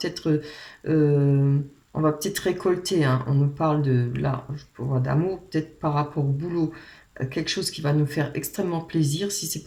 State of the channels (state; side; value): identical; both; correlation 1.00